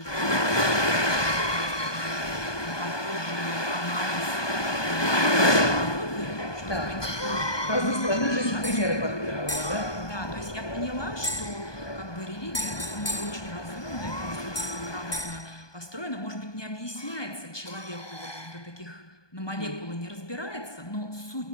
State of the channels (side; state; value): right; late; 1.2 ms